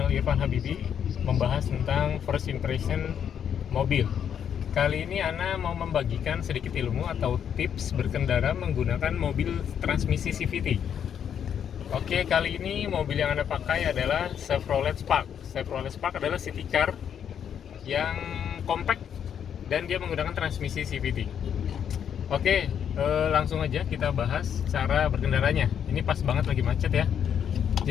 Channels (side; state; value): right; quieter; 8.5 dB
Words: Irfan Habibi, membahas tentang first impression mobil. Kali ini Ana mau membagikan sedikit ilmu atau tips berkendara menggunakan mobil transmisi CVT. Oke, kali ini mobil yang Ana pakai adalah Chevrolet Spark. Chevrolet Spark adalah city car yang compact dan dia menggunakan transmisi CVT. Oke, langsung aja kita bahas cara berkendaranya. Ini pas banget lagi macet ya.